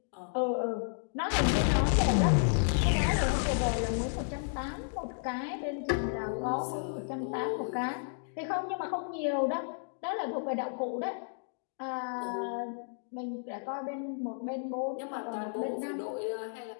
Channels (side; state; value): right; silent; digital silence